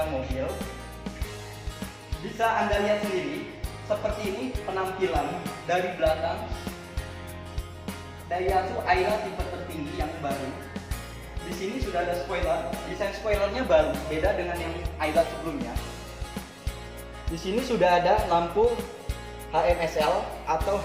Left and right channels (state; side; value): identical; both; correlation 1.00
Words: mobil. Bisa Anda lihat sendiri, seperti ini penampilan dari belakang Daihatsu Ayla tipe tertinggi yang baru. Di sini sudah ada spoiler. Desain spoilernya baru, beda dengan yang Ayla sebelumnya. Di sini sudah ada lampu HMSL atau